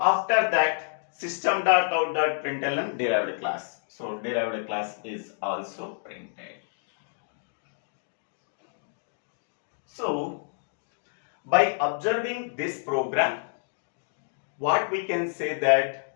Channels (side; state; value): right; silent; digital silence